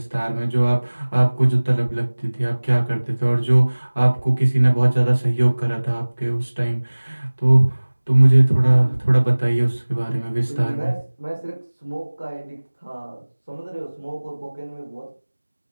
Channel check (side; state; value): both; inverted; correlation -1.00